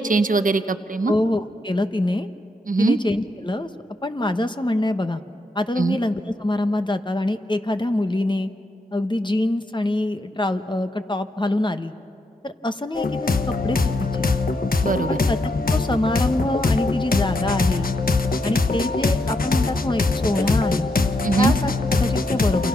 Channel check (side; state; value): both; normal; correlation 0.80